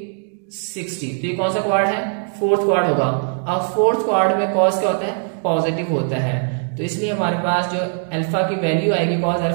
तो ये कौन सा क्वाड है, फोर्थ क्वाड होगा। अब फोर्थ क्वाड में कॉस क्या होता है, पॉजिटिव होता है, तो इसलिए हमारे पास जो अल्फा की वैल्यू आएगी कॉस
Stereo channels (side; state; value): left; silent; 57 dB below the other